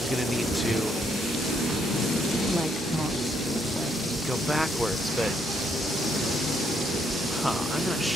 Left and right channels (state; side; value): normal; both; correlation 0.73